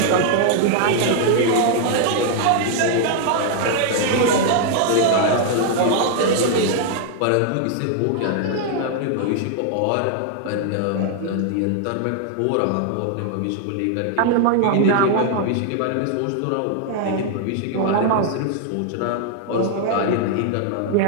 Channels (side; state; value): both; different; correlation 0.00